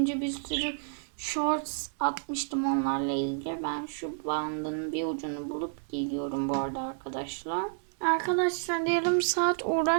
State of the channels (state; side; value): silent; left; 58 dB below the other